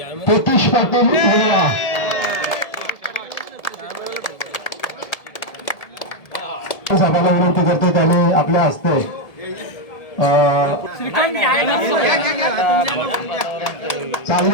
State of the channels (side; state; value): right; late; 1.7 ms